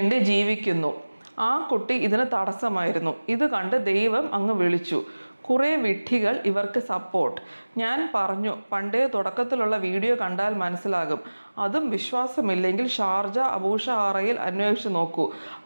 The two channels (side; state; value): both; inverted; correlation -1.00